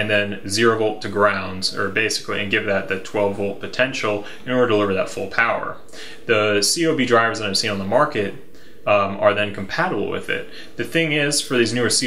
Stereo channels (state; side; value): identical; both; correlation 1.00